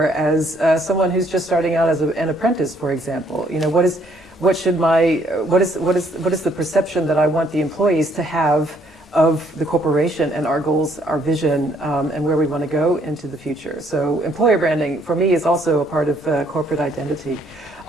as someone who's just starting out as an apprentice, for example? What is the perception that I want the employees to have of the corporation and our goals, our vision, and where we want to go into the future? So employer branding, for me, is also a part of corporate identity.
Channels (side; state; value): both; normal; correlation 0.67